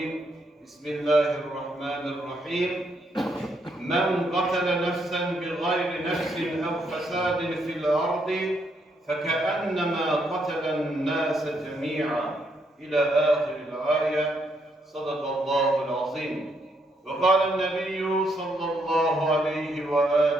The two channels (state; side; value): normal; both; correlation 0.75